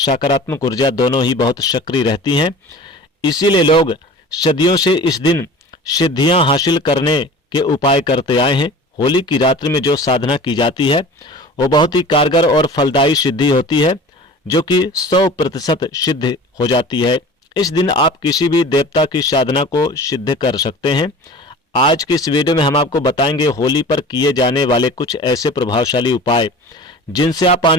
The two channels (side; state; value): both; normal; correlation 0.40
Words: ऊर्जा दोनों ही बहुत सक्रिय रहती हैं। इसीलिए लोग सदियों से इस दिन सिद्धियां हासिल करने के उपाय करते आए हैं। होली की रात्रि में जो साधना की जाती है वो बहुत ही कारगर और फलदायी सिद्धि होती है, जो कि 100% सिद्ध हो जाती है। इस दिन आप किसी भी देवता की साधना को सिद्ध कर सकते हैं। आज की इस वीडियो में हम आपको बताएंगे होली पर किए जाने वाले कुछ ऐसे प्रभावशाली उपाय जिनसे आप